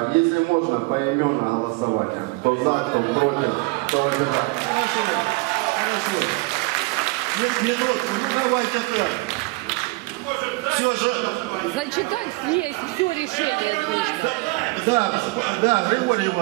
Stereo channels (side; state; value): left; quieter; 25.8 dB